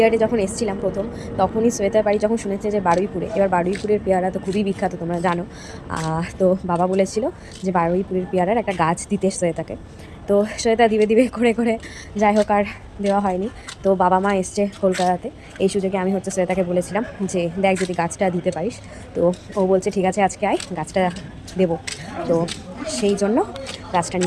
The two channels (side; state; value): both; identical; correlation 1.00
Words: যখন এসেছিলাম প্রথম, তখনই শ্বেতার বাড়ি যখন শুনেছে যে বারুইপুরে, এবার বারুইপুরের পেয়ারা তো খুবই বিখ্যাত, তোমরা জানো। তো বাবা বলেছিল যে বারুইপুরের পেয়ারার একটা গাছ দিতে শ্বেতাকে। তো শ্বেতা দিবে দিবে করে করে যাই হোক আর দেওয়া হয়নি। তো বাবা মা এসছে কলকাতাতে, এই সুযোগে আমি হচ্ছে শ্বেতাকে বলেছিলাম যে দেখ যদি গাছটা দিতে পারিস। তো ও বলছে ঠিক আছে আজকে আয়, গাছটা দেবো। তো সেই জন্য গাছটা